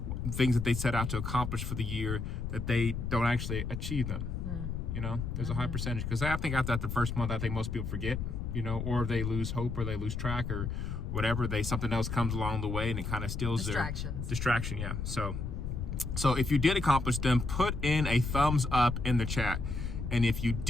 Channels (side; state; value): left; noise; rumble, 4 dB below the sound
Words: things that they set out to accomplish for the year, that they don't actually achieve them. There's a high percentage, because I think after the first month, I think most people forget, or they lose hope, or they lose track, or whatever. Something else comes along the way and it kind of steals their distraction. Yeah. So if you did accomplish them, put in a thumbs up in the chat. And if you